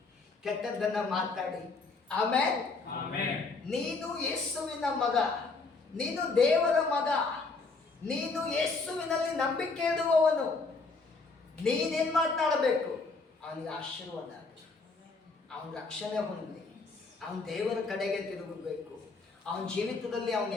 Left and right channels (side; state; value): right; quieter; 4.0 dB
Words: ಕೆಟ್ಟದ್ದನ್ನ ಮಾತಾಡಿ? ಆಮೆನ್. ನೀನು ಯೇಸುವಿನ ಮಗ, ನೀನು ದೇವರ ಮಗ, ನೀನು ಯೇಸುವಿನಲ್ಲಿ ನಂಬಿಕೆ ಇಡುವವನು. ನೀನೇನು ಮಾತನಾಡಬೇಕು? ಅವನಿಗೆ ಆಶೀರ್ವಾದ ಆಗಲಿ, ಅವನ ರಕ್ಷಣೆ ಹೊಂದಲಿ, ಅವನ ದೇವರ ಕಡೆಗೆ ತಿರುಗಬೇಕು. ಅವನ ಜೀವಿತದಲ್ಲಿ ಅವನು